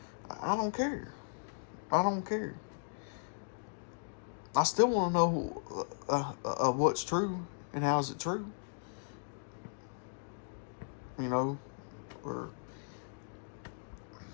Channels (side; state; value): right; silent; digital silence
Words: I don't care. I don't care. I still want to know what's true and how is it true. You know, or